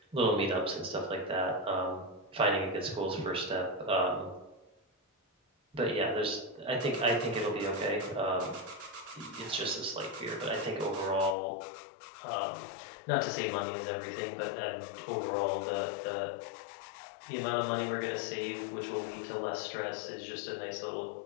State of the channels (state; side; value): drops out; right; at 11.4 s